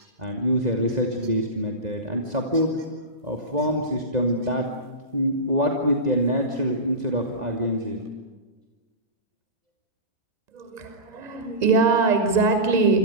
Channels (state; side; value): late; left; 2.0 ms